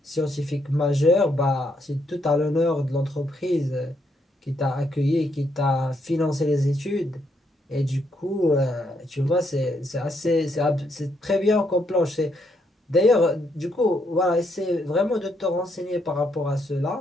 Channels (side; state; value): both; normal; correlation 0.75